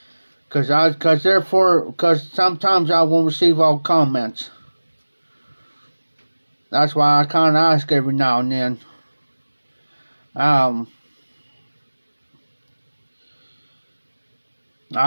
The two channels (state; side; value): inverted; both; correlation -1.00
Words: because sometimes I won't receive all comments. That's why I kind of ask every now and then. I